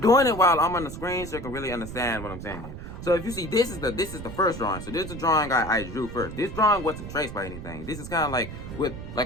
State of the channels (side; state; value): right; noise; rumble, 10 dB below the sound